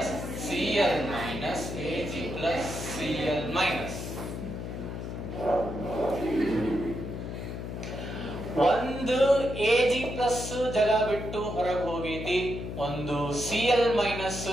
Cl minus, Ag plus Cl minus. ಒಂದು Ag plus ಜಾಗ ಬಿಟ್ಟು ಹೊರಗೆ ಹೋಗೈತಿ, ಒಂದು Cl minus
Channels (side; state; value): left; noise; hum, 6 dB below the sound